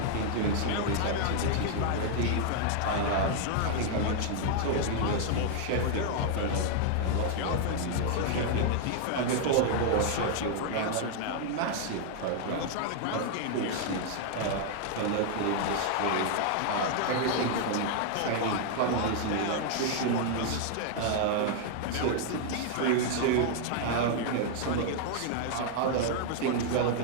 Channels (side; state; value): both; different; correlation 0.00